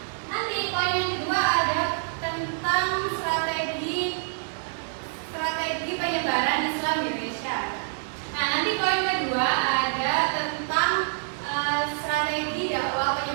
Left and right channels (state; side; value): silent; left; 61 dB below the other